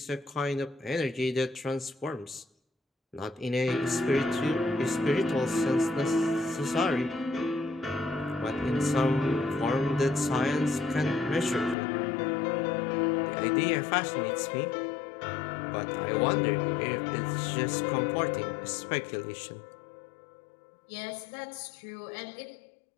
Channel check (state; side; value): drops out; right; at 11.8 s